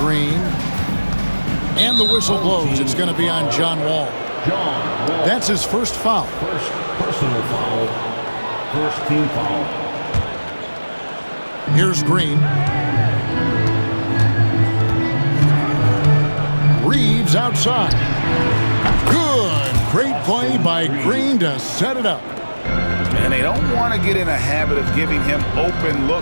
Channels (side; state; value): both; inverted; correlation -1.00